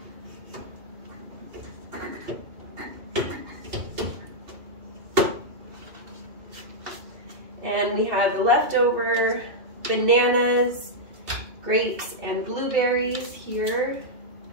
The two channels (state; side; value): late; left; 2.7 ms